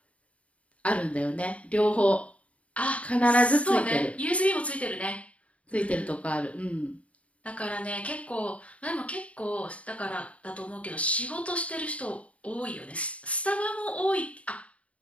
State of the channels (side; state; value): right; late; 0.065 ms